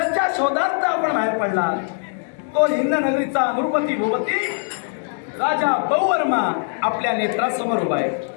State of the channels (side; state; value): right; silent; 65 dB below the other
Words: शोधार्थ आपण बाहेर पडला तो हिंद नगरीचा द्रौपदी भूपती राजा बहुवर्मा आपल्या नेत्रासमोर उभा आहे.